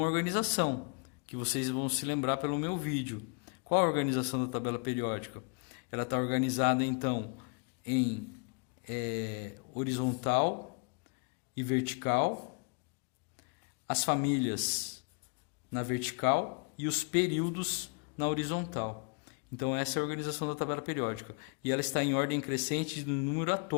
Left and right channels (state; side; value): quieter; right; 36.6 dB